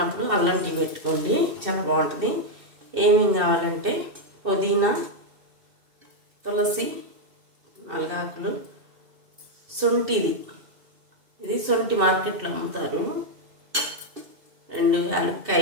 అల్లం టీ పెట్టుకోండి, చాలా బాగుంటుంది. ఏమేమి కావాలంటే పుదీనా, తులసి 4 ఆకులు, శొంఠిది, ఇది శొంఠి మార్కెట్లో అమ్ముతారు, 2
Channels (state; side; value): late; left; 2.7 ms